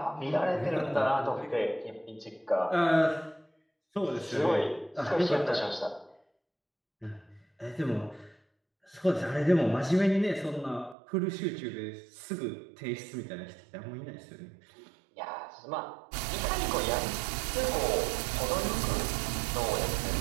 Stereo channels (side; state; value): left; drops out; at 11.0 s